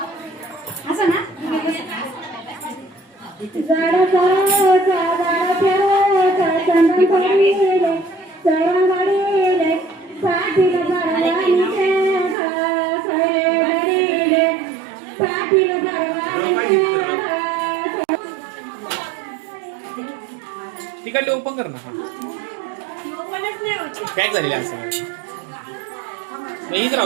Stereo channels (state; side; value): drops out; left; at 12.4 s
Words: तिकडले ओपन कर ना पॅक झालेले असं इथं